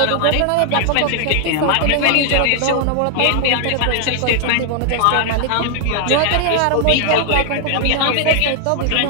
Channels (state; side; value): different; both; correlation 0.00